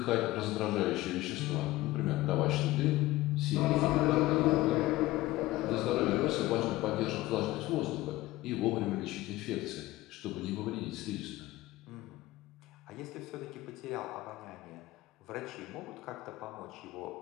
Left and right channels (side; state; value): right; quieter; 17.8 dB